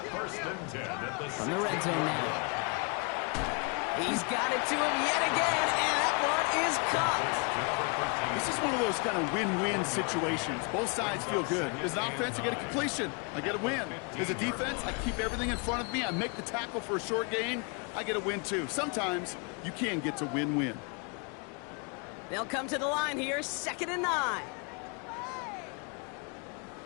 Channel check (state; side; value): quieter; right; 34.6 dB